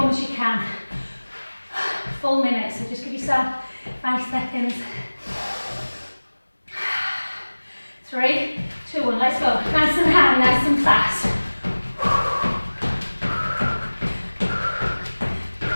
as you can. Full minute, so just give yourself 5 seconds. 3, 2, 1, let's go. Nice and high, nice and fast.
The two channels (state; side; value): inverted; both; correlation -1.00